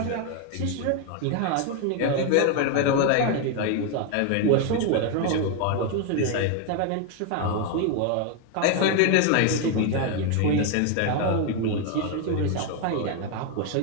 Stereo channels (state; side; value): different; both; correlation 0.01